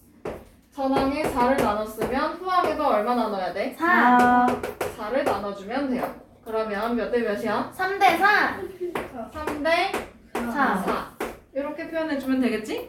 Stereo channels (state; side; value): identical; both; correlation 1.00